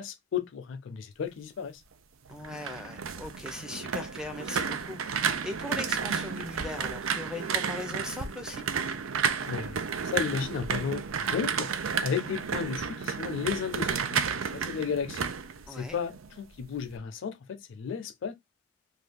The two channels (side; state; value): both; normal; correlation 0.15